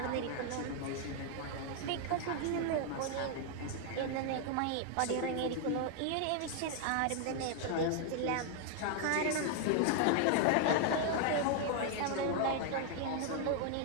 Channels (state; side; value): different; both; correlation 0.00